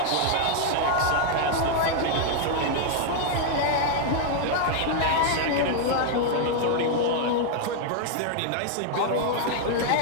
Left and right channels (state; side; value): different; both; correlation 0.00